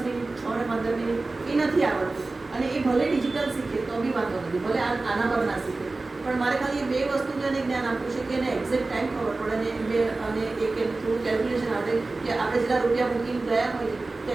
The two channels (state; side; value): quieter; left; 3.4 dB